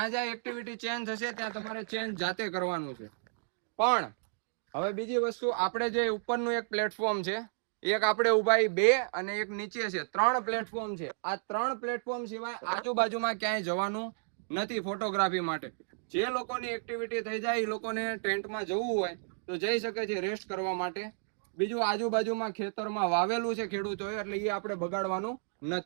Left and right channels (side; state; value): left; silent; digital silence